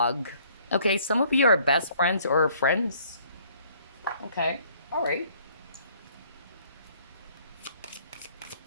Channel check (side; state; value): both; inverted; correlation -0.60